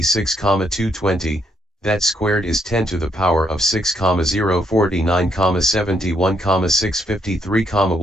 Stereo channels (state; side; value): normal; both; correlation 0.74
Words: 220, that squared is 10 to the power of 6, 049, 71, 653,